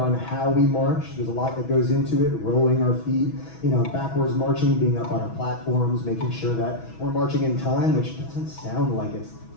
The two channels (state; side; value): late; right; 6.1 ms